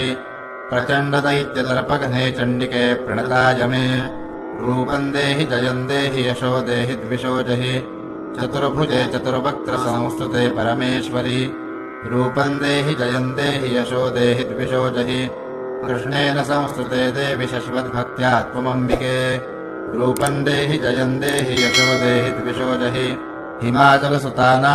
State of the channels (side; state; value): both; identical; correlation 1.00